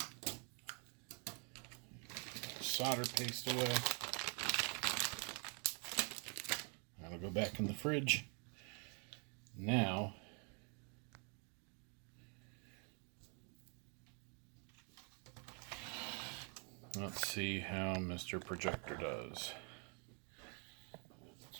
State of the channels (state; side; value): quieter; left; 37.1 dB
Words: Solder paste away. That'll go back in the fridge. Now, let's see how Mr. Projector does.